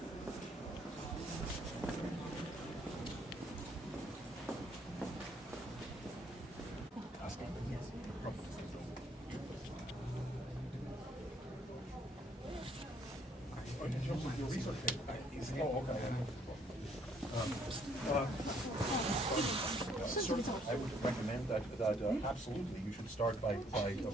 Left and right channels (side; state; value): both; normal; correlation 0.66